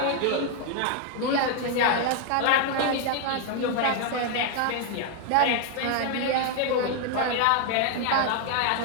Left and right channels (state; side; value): different; both; correlation 0.00